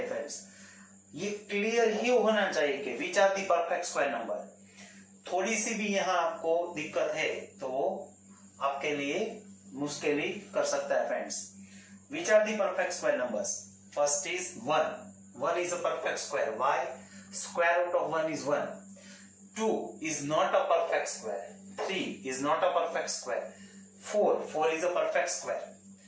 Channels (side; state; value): both; identical; correlation 1.00